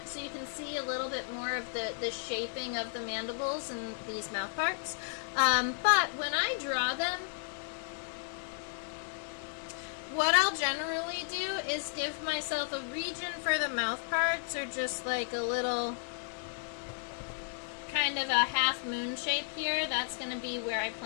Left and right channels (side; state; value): right; silent; digital silence